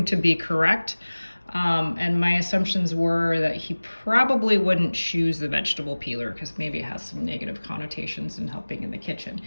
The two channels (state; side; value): inverted; both; correlation -1.00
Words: to be correct. And my assumptions were that he probably wouldn't choose the vegetable peeler because maybe it has some negative connotations in helping in the kitchen.